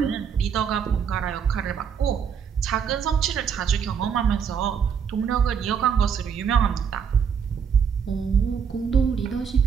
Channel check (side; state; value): left; quieter; 7.1 dB